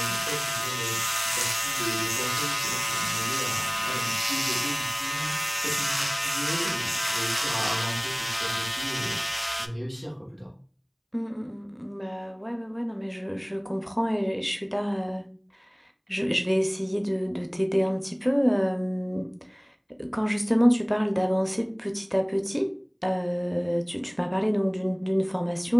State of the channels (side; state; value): both; identical; correlation 1.00